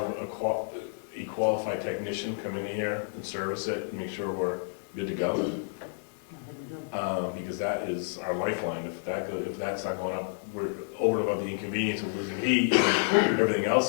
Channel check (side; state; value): right; silent; 55 dB below the other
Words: a qualified technician come in here and service it and make sure we're good to go. Because that is our lifeline. If that's not going up, we're over and above the inconvenience of losing heat and everything